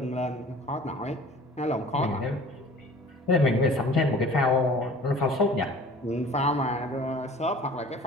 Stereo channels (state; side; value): normal; both; correlation 0.46